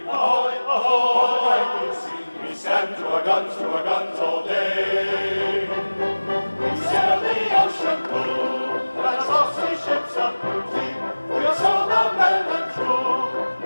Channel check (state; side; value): inverted; both; correlation -1.00